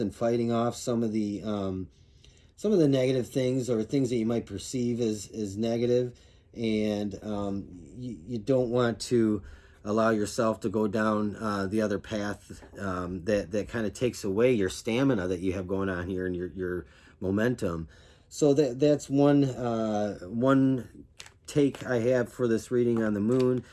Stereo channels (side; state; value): both; identical; correlation 1.00